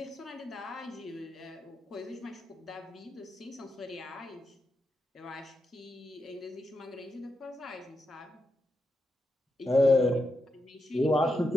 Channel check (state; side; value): normal; both; correlation 0.86